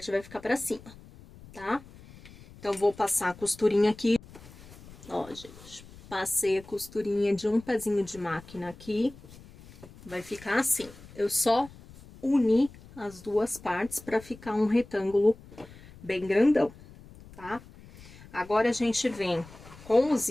vai ficar para cima, tá? Então, vou passar a costurinha aqui. Ó, gente, passei a costurinha de um pezinho de máquina aqui, vai ficar assim. Eu só uni as duas partes para ficar um retângulo bem grandão, tá? Agora a gente vem com o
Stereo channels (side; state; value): left; noise; rumble, 20 dB below the sound